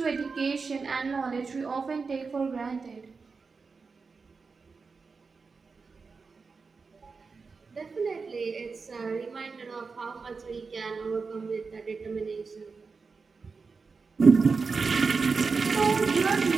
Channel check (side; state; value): left; quieter; 4.7 dB